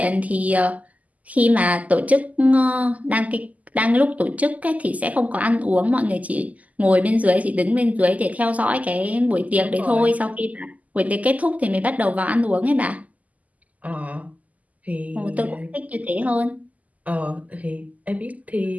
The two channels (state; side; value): late; left; 0.075 ms